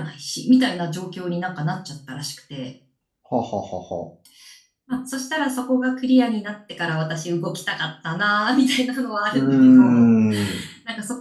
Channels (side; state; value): both; identical; correlation 1.00